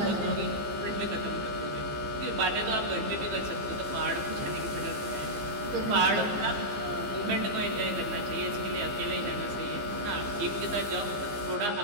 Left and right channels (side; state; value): left; late; 15 ms